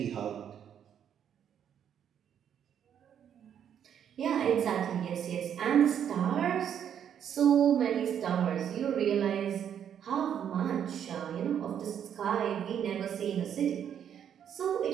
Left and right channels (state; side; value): quieter; left; 9.0 dB